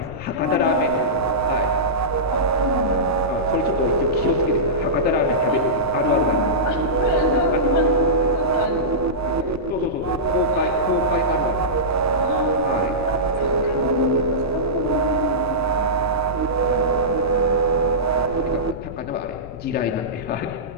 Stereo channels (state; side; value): noise; left; rumble, 16 dB below the sound